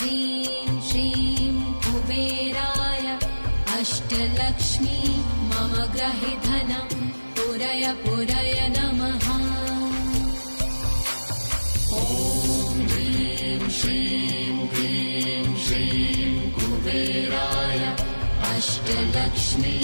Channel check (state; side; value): inverted; both; correlation -1.00